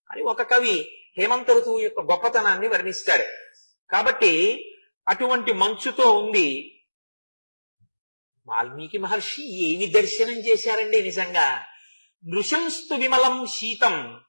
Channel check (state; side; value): inverted; both; correlation -1.00